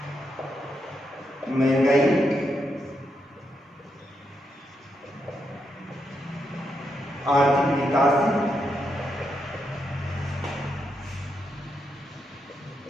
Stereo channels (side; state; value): both; normal; correlation 0.82